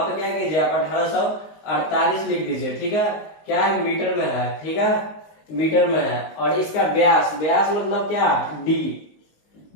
पे क्या कीजिए आप 1848 लिख दीजिए। ठीक है, क्या है, मीटर में है। ठीक है, मीटर में है। और इसका व्यास मतलब क्या, डी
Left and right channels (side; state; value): right; late; 19 ms